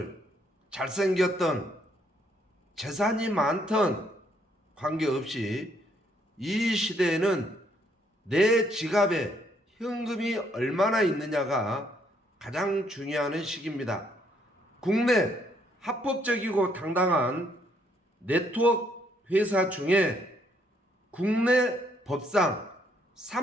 잘생겼던, 재산이 많던 관계없이 이 시대에는 내 지갑에 현금이 얼마나 있느냐가 가장 중요한 시기입니다. 국내 합법적이고 당당한 네트워크 회사 중에 국내 법상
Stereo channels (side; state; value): both; normal; correlation 0.70